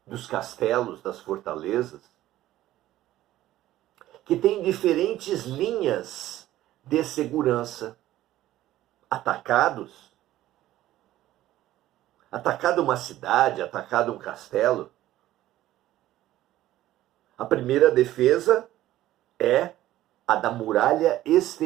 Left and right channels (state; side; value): quieter; left; 14.4 dB